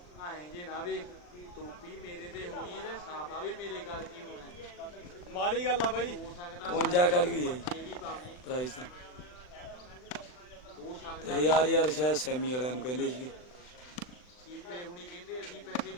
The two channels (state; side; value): late; right; 39 ms